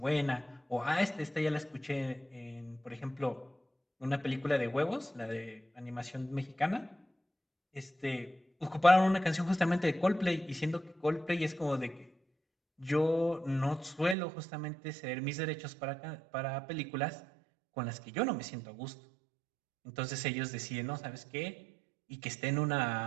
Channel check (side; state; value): left; drops out; at 14.2 s